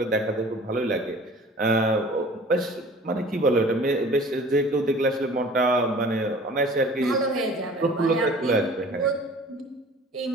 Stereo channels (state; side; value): normal; both; correlation 0.46